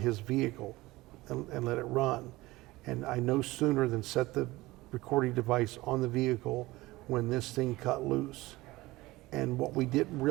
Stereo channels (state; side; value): quieter; left; 19.5 dB